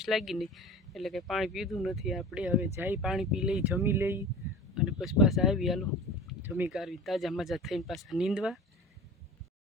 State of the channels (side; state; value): both; normal; correlation 0.37